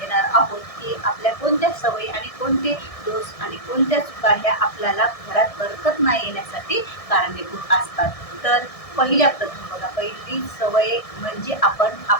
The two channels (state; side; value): late; right; 1.6 ms